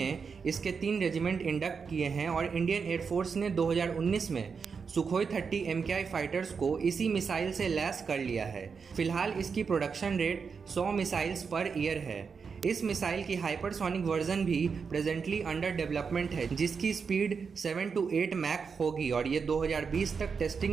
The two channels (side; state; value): left; quieter; 5.7 dB